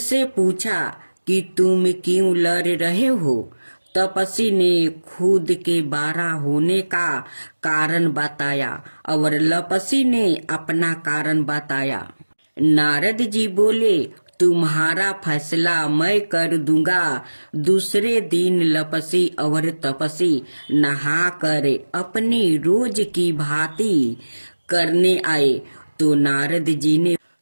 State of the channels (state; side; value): inverted; both; correlation -1.00